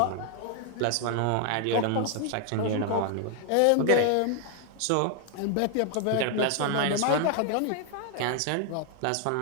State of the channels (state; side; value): different; both; correlation 0.00